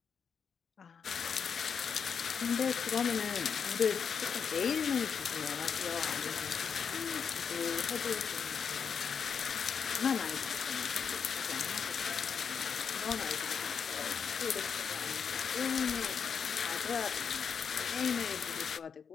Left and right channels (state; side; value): quieter; right; 6.6 dB